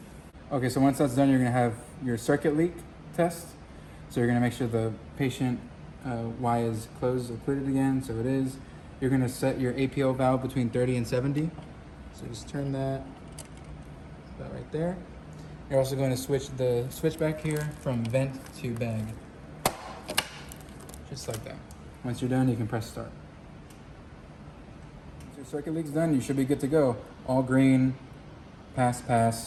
Okay, so once that's done, you're gonna have your circuit leak test. So you're gonna make sure the patient Y is closed, occluded again, so it is. You're gonna set your APO valve between 30 and 70. So just turn that right there. You're also going to switch the switch back here from vent to bag. Just like that. Once you're done, you can press start. Once your circuit leak's done, you should be good to go. All green,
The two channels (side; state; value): both; identical; correlation 1.00